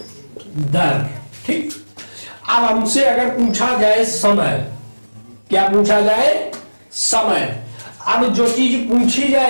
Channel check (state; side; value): inverted; both; correlation -1.00